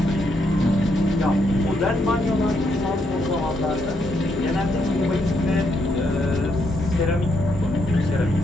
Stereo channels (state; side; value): normal; both; correlation 0.77